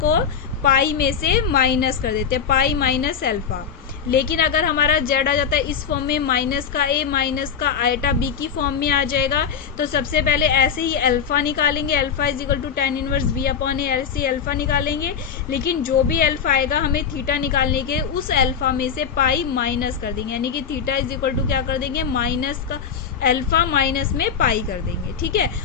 पाई में से माइनस कर देते हैं, पाई माइनस अल्फा। लेकिन अगर हमारा जेड आ जाता है इस फॉर्म में, माइनस का ए माइनस का आइटा बी की फॉर्म में आ जाएगा, तो सबसे पहले ऐसे ही अल्फा निकालेंगे, alpha is equal to tan inverse b upon a, ऐसे अल्फा निकालेंगे। लेकिन जो भी अल्फा आएगा हमें थीटा निकालने के, उस अल्फा में से पाई माइनस कर देंगे, यानी कि थीटा इज इक्वल टू क्या कर देंगे, माइनस का अल्फा माइनस में पाई कर देंगे। ठीक है,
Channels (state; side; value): quieter; right; 7.2 dB